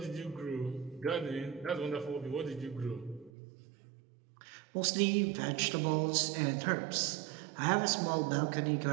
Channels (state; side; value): drops out; left; at 3.3 s